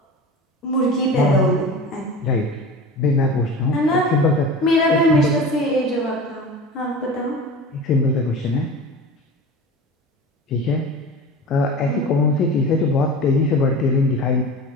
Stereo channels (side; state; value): both; normal; correlation 0.34